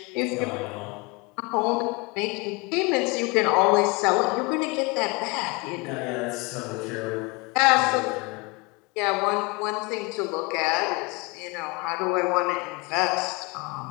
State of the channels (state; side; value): quieter; right; 27.1 dB